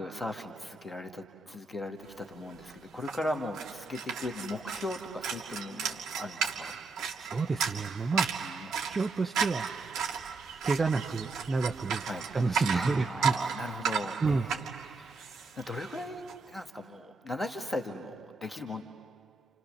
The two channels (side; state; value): left; quieter; 3.6 dB